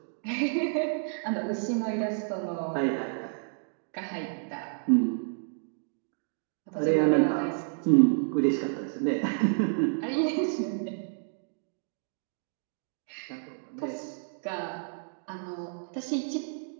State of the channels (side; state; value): left; silent; digital silence